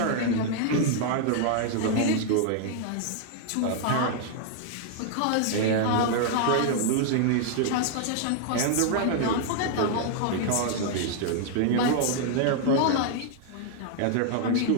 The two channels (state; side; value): different; both; correlation 0.00